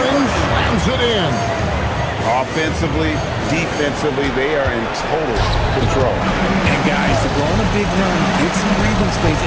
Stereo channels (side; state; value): both; identical; correlation 1.00